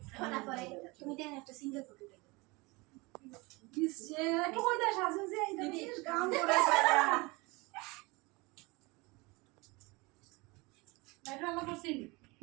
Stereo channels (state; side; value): quieter; left; 25.1 dB